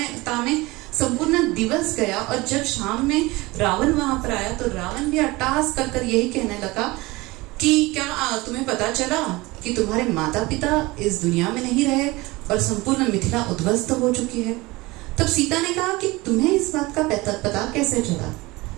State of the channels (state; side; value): quieter; left; 21.7 dB